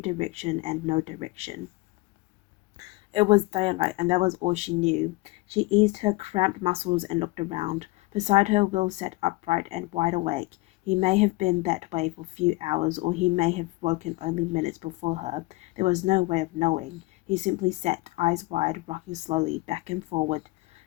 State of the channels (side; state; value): right; quieter; 22.5 dB